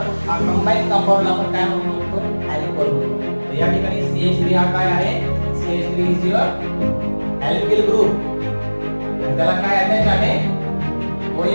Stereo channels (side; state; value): both; inverted; correlation -1.00